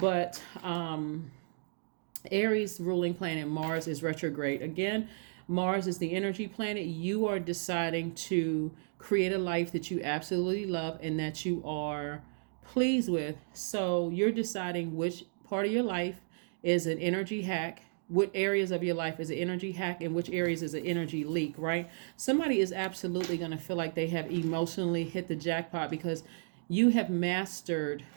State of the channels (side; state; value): left; silent; digital silence